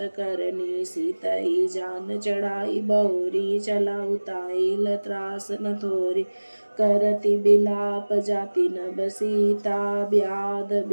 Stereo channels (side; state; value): both; inverted; correlation -1.00